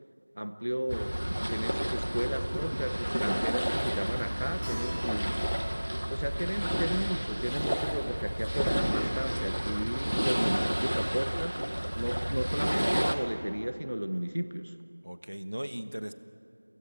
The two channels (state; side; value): inverted; both; correlation -1.00